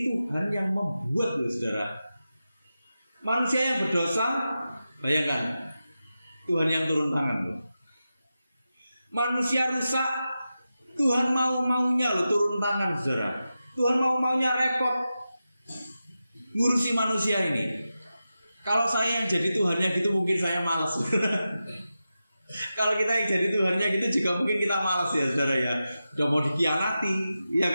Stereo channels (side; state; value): both; inverted; correlation -0.92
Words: Tuhan yang membuat loh saudara. Manusia yang berdosa, bayangkan, Tuhan yang turun tangan loh. Manusia rusak, Tuhan mau-maunya loh turun tangan saudara. Tuhan mau-maunya repot ngurusi manusia ini. Kalau saya yang jadi Tuhannya gitu mungkin saya malas. Kalau kita yang jadi Tuhannya gitu juga mungkin kita malas ya saudara ya. Udah mau dikhianati, ya